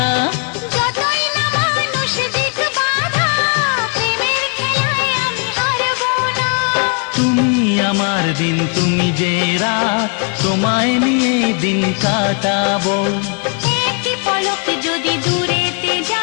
যতই না মানুষ দিক বাধা, প্রেমের খেলায় আমি হারবো না। তুমি আমার দিন, তুমি যে রাত, তোমায় নিয়ে দিন কাটাবো। একটি পলক যদি দূরেতে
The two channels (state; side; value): quieter; right; 36.4 dB